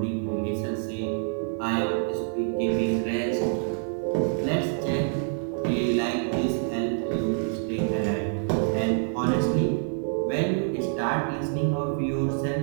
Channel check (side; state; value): left; silent; 60 dB below the other